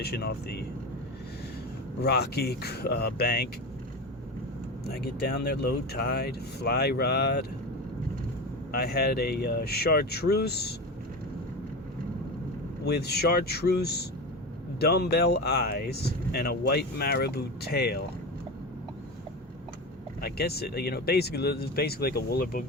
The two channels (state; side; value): normal; both; correlation 0.24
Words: off the rocky bank. I get down there, low tide, fly rod. I had a chartreuse with chartreuse dumbbell eyes and a white marabou tail. I guess it's basically like a woolly